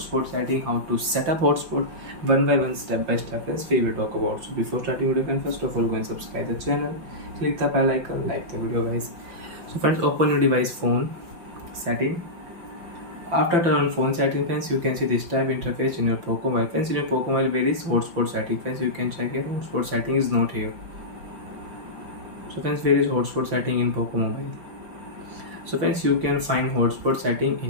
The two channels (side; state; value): left; late; 5.8 ms